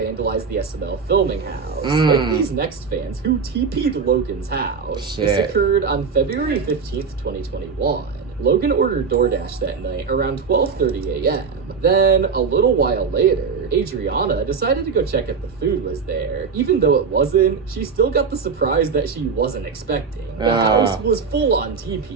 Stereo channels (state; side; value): quieter; left; 5.5 dB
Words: the SML filming house, like these next fans who TP'd Logan's house. Shit. This occurred on February 15th, 2021. Logan ordered DoorDash that night around 12:30 a.m. Then, a little while later, Adriana decided to go check if the food was there. Even though it wasn't, she still got the surprise that she wasn't expecting. The house was full on